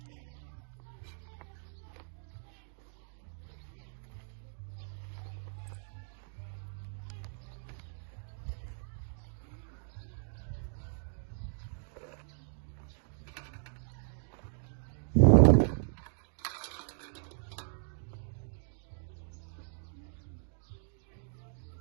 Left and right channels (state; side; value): silent; left; digital silence